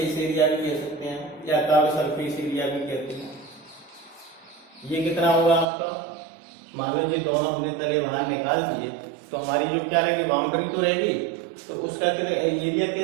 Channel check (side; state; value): left; drops out; at 5.7 s